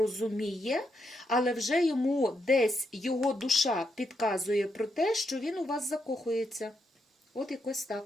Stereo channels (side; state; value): both; normal; correlation 0.80